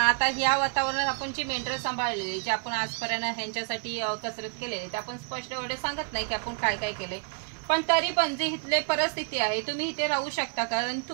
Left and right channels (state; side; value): quieter; left; 37.5 dB